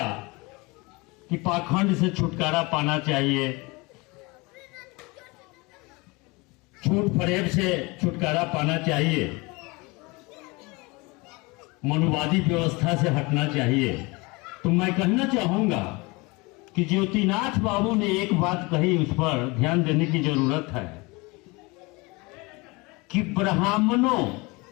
कि पाखंड से छुटकारा पाना चाहिए, झूठ फरेब से छुटकारा पाना चाहिए, मनुवादी व्यवस्था से हटना चाहिए। तो मैं कहना चाहूंगा कि ज्योतिनाथ बाबू ने एक बात कही, उस पर ध्यान देने की जरूरत है कि ब्राह्मणों,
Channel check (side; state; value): right; quieter; 25.5 dB